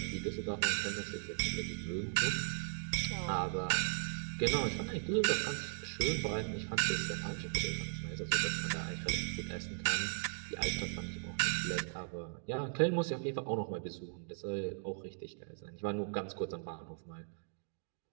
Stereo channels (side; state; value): left; silent; digital silence